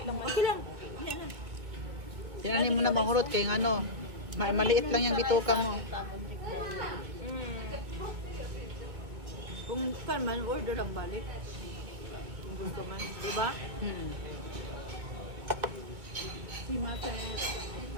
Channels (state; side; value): late; left; 2.0 ms